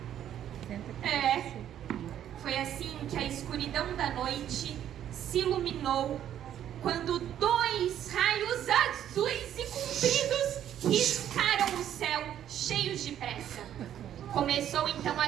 Foi assim que a escuridão da noite se iluminou quando 2 raios azuis e compridos riscaram o céu cheios de pressa. Começou então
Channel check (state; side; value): quieter; left; 10.6 dB